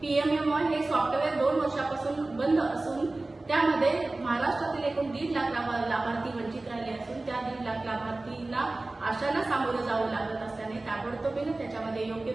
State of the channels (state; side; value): quieter; left; 3.0 dB